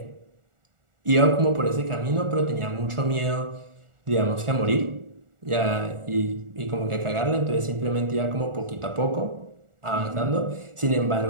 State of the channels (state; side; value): late; left; 1.4 ms